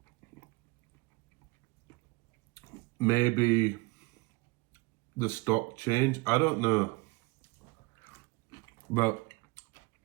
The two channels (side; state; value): left; quieter; 25.4 dB